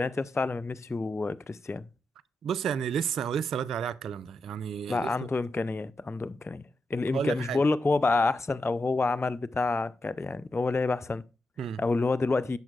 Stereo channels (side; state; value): both; normal; correlation 0.86